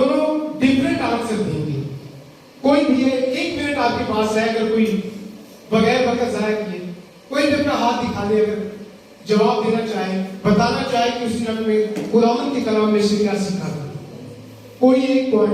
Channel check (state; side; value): identical; both; correlation 1.00